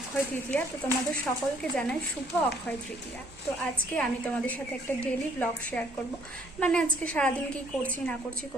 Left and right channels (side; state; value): both; normal; correlation 0.62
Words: তৃতীয়া, তো তোমাদের সকলকে জানাই শুভ অক্ষয় তৃতীয়া। তো আজকে আমি তোমাদের সাথে একটা ডেইলি ব্লগ শেয়ার করব, মানে আজকে সারাদিন কি করছি না করছি,